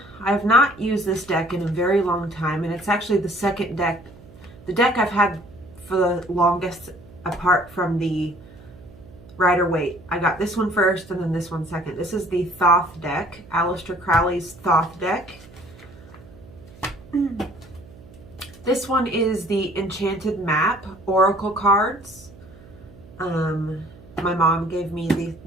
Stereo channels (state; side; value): noise; right; hum, 21 dB below the sound